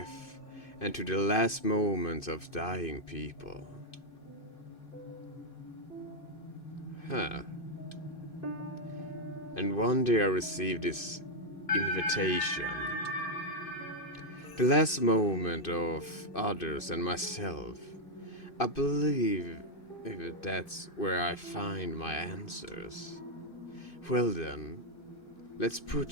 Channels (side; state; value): right; late; 2.6 ms